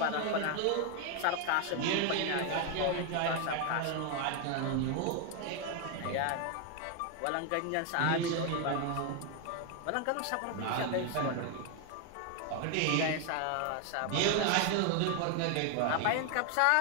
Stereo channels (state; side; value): different; both; correlation 0.01